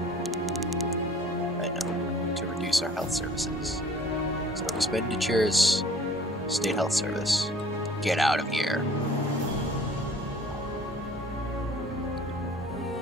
I know. To reduce our health services. So expenditures, state health service. Get out of here.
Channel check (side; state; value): both; normal; correlation 0.51